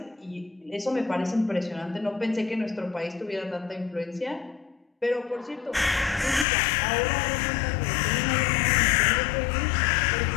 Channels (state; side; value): drops out; right; at 6.5 s